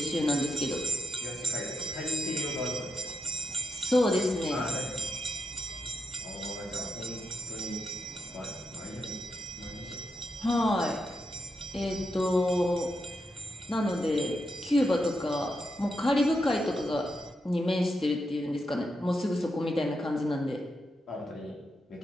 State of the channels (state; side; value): normal; both; correlation 0.85